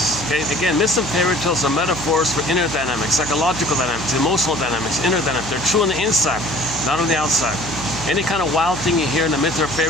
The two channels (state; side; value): noise; right; hum, 12 dB below the sound